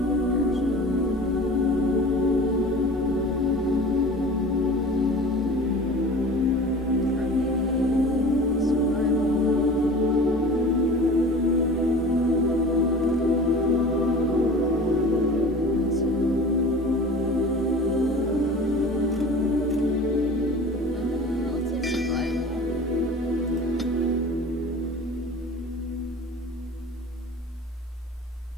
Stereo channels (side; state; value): both; normal; correlation 0.39